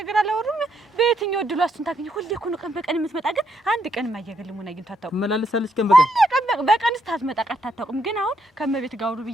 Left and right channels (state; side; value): normal; both; correlation 0.76